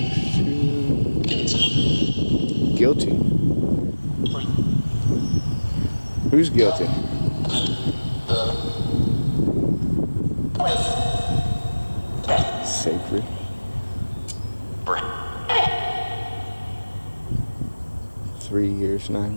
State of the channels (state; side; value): inverted; both; correlation -1.00